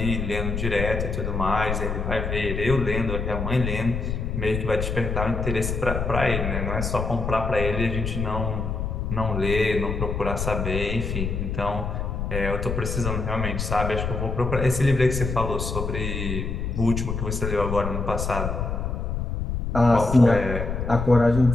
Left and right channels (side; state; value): left; noise; rumble, 3 dB below the sound